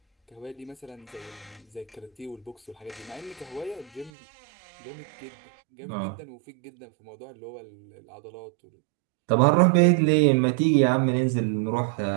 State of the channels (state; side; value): drops out; left; at 4.1 s